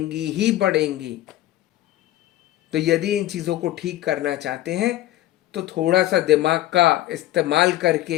ही बढ़ेंगी। तो यदि इन चीज़ों को ठीक करना चाहते हैं तो थोड़ा सा दिमाग का इस्तेमाल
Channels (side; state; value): right; quieter; 14.6 dB